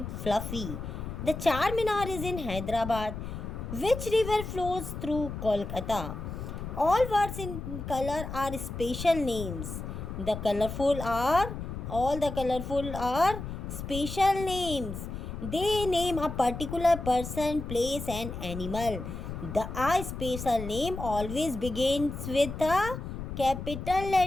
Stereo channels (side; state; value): left; noise; rumble, 7 dB below the sound